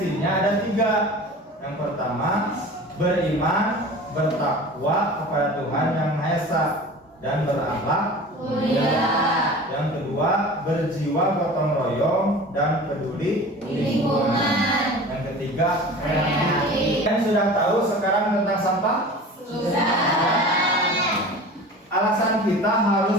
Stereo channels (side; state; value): both; normal; correlation 0.38